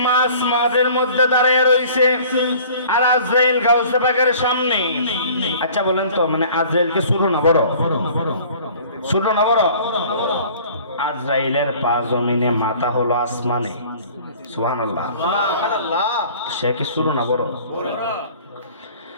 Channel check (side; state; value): both; inverted; correlation -0.49